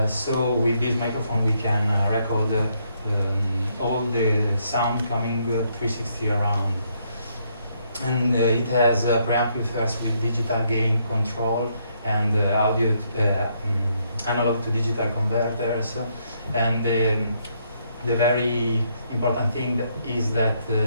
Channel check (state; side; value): inverted; both; correlation -0.73